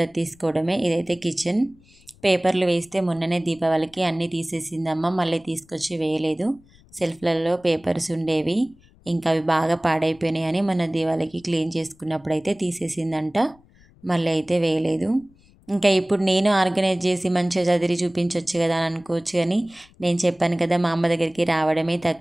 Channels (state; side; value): noise; left; rumble, 28 dB below the sound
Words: తీసుకోవడమే. ఇదైతే కిచెన్. పేపర్లు వేస్తే మొన్ననే దీపావళికి అన్నీ తీసేసిందమ్మ, మళ్ళీ తీసుకొచ్చి వేయలేదు. సెల్ఫ్లలో పేపర్స్ ఉండేవి, ఇంకా అవి బాగా పాడైపోయినాయి అని మన దీపావళికి క్లీన్ చేసుకున్నప్పుడు అయితే తీసేసిందంట, మళ్ళీ అయితే వేయలేదు. ఇంకా ఇప్పుడు నేను ఆర్గనైజ్ చేసి మంచిగా చదివి చూపించవచ్చు కదా అని అనుకోవచ్చు, కానీ నేను చెప్పాను కదా మా అమ్మ దగ్గరికి రావడమే